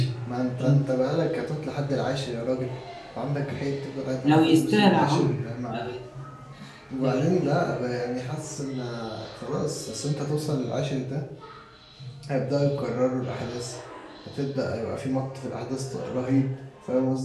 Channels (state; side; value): identical; both; correlation 1.00